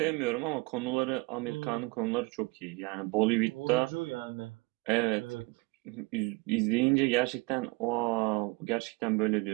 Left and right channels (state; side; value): quieter; left; 25.7 dB